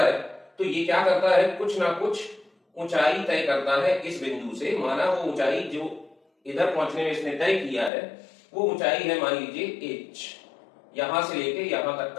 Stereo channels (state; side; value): drops out; right; at 7.9 s